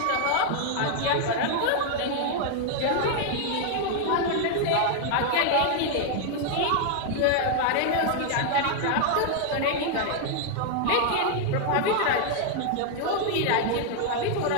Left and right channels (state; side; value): different; both; correlation 0.00